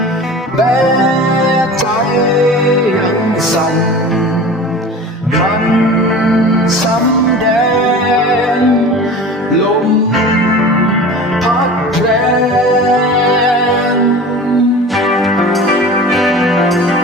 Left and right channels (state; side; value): normal; both; correlation 0.37